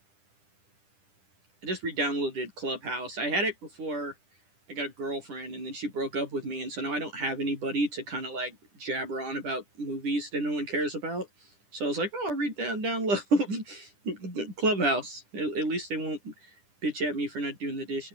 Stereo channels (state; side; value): late; left; 10 ms